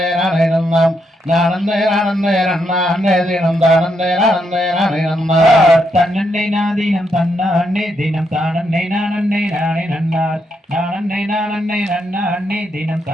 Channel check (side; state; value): both; normal; correlation 0.79